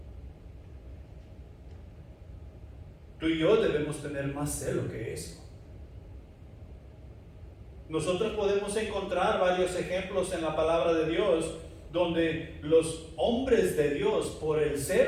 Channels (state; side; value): identical; both; correlation 1.00